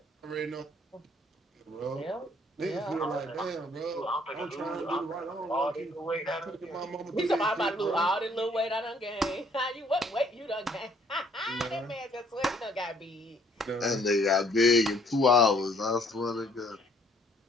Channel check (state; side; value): normal; both; correlation 0.62